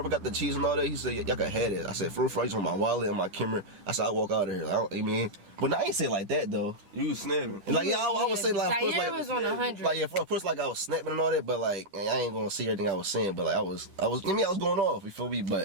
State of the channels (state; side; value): late; left; 10 ms